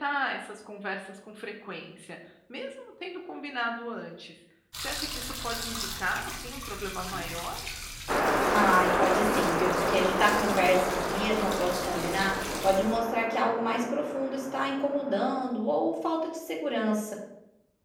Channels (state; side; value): identical; both; correlation 1.00